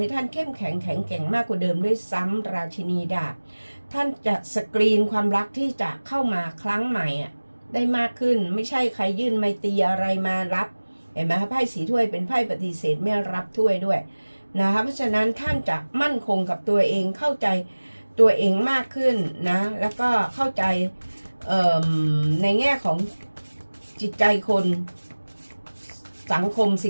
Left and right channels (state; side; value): inverted; both; correlation -1.00